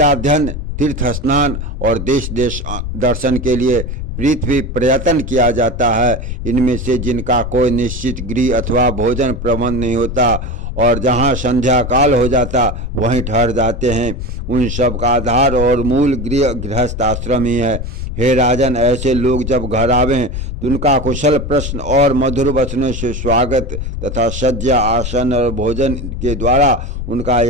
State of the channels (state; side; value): noise; left; rumble, 5 dB below the sound